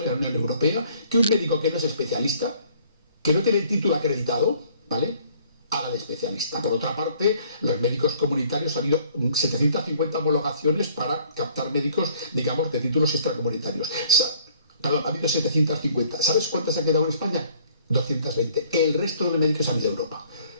en la Unión Europea que un médico que no es especialista, que no tiene el título acreditado, ¿vale?, haga de especialista. Por otra parte, los médicos comunitarios, ha habido 750 homologaciones para captar médicos, digamos, de títulos extracomunitarios. Perdón, ha habido 750. ¿Sabes cuántas ha quedado en España? 220. El resto de los médicos han ido a Europa.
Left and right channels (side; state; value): both; inverted; correlation -0.58